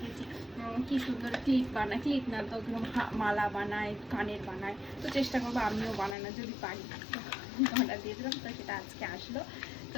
কি সুন্দর ক্লিপ বানায়, ক্লিপ না তো মালা বানায়, কানের বানায়, তো চেষ্টা করবো আমিও বানানো যদি পারি। অর্ডার দিয়েছিলাম, তো সেটা আজকে আসলো। তো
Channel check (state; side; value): drops out; right; at 6.2 s